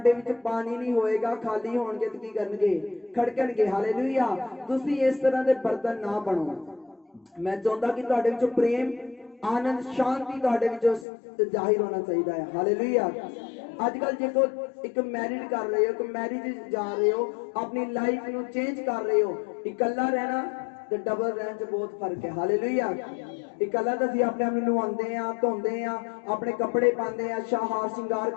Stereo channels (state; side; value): drops out; right; at 11.1 s